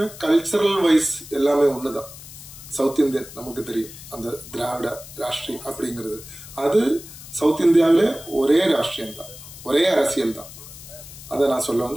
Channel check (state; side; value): noise; left; hiss, 16 dB below the sound